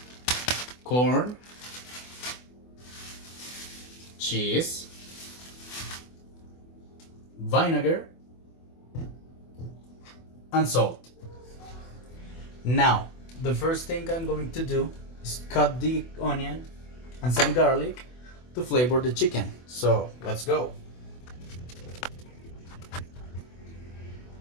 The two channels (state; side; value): late; right; 24 ms